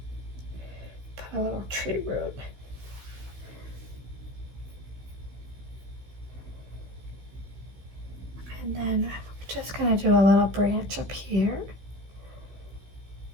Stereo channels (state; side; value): late; left; 16 ms